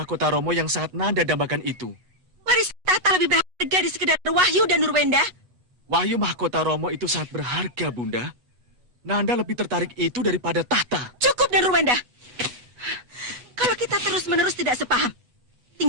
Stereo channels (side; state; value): left; late; 8.2 ms